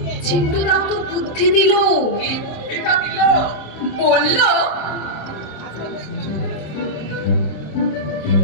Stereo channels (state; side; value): late; right; 26 ms